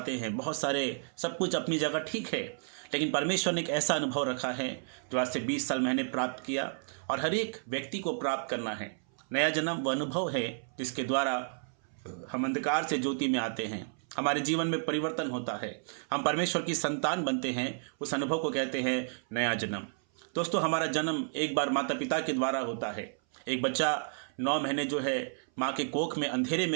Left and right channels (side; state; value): left; silent; 57 dB below the other